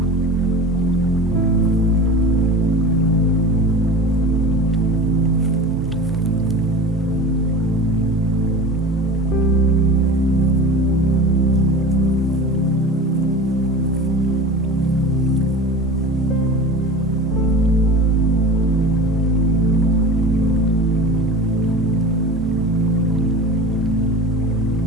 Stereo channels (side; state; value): both; normal; correlation 0.33